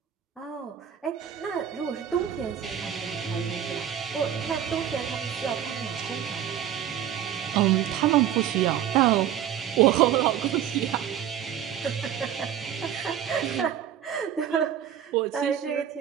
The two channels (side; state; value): left; quieter; 9.9 dB